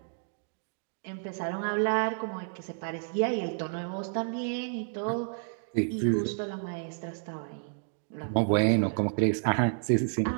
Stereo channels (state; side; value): silent; left; digital silence